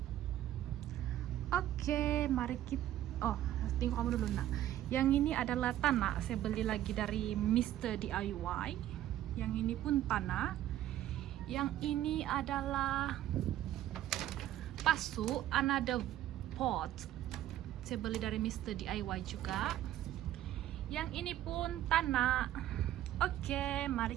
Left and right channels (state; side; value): quieter; left; 12.9 dB